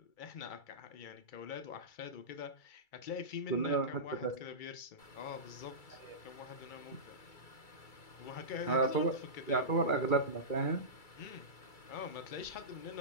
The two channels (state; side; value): late; right; 2.3 ms